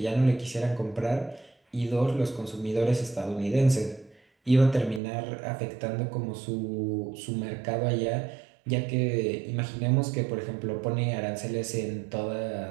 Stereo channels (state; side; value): drops out; left; at 5.0 s